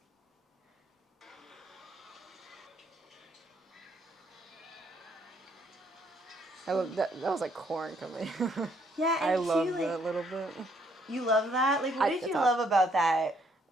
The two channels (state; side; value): normal; both; correlation 0.69